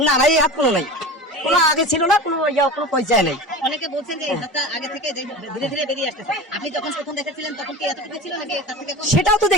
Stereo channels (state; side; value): normal; both; correlation 0.32